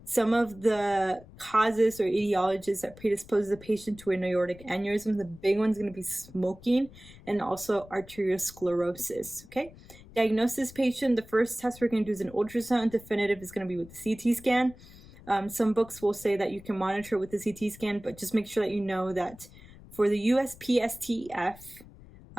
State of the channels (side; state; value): left; noise; rumble, 20 dB below the sound